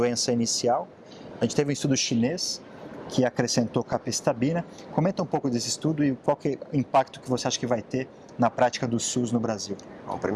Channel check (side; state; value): both; identical; correlation 1.00